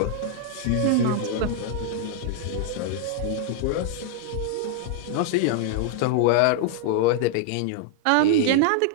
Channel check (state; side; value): different; both; correlation -0.01